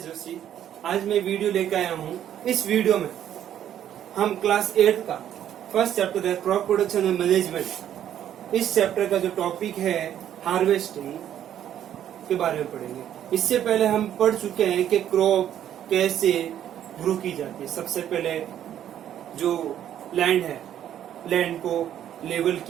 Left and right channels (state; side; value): quieter; left; 10.6 dB